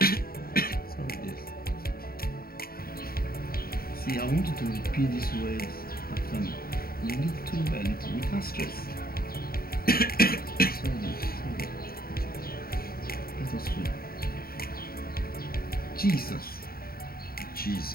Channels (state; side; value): late; right; 0.44 ms